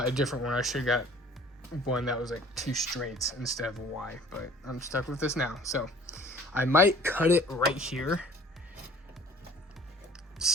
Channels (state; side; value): normal; both; correlation 0.50